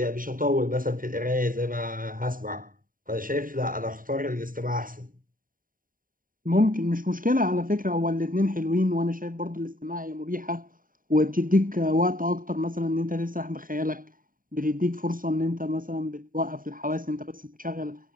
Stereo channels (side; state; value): left; late; 0.41 ms